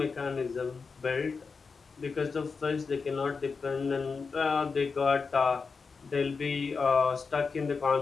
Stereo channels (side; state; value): right; quieter; 4.9 dB